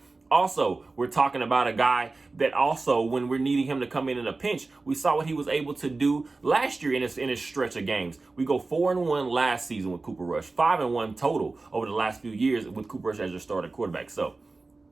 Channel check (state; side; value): quieter; left; 3.6 dB